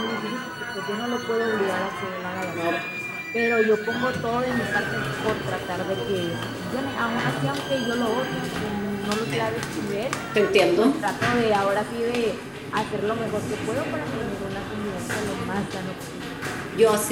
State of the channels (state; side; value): identical; both; correlation 1.00